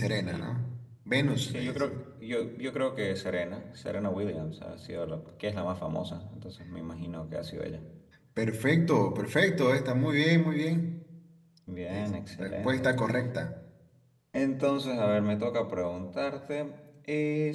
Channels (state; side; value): identical; both; correlation 1.00